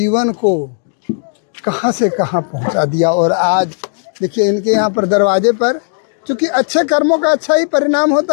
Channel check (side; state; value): right; silent; digital silence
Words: को कहां से कहां पहुंचा दिया। और आज देखिए इनके यहाँ पर दरवाजे पर, चूँकि अच्छे कर्मों का अच्छा ही परिणाम